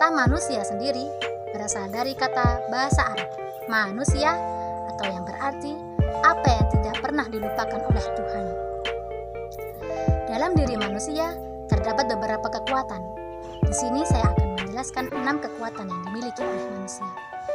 manusia sendiri berasal dari kata bahasa Arab manusia, atau yang berarti apa yang tidak pernah dilupakan oleh Tuhan. Dalam diri manusia terdapat beberapa kekuatan. Di sini saya akan menjelaskan 6 kekuatan yang dimiliki oleh manusia.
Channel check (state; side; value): identical; both; correlation 1.00